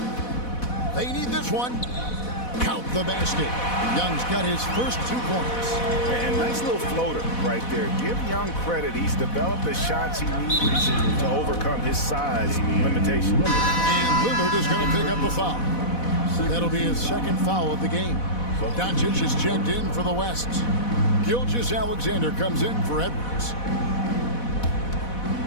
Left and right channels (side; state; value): right; late; 4.1 ms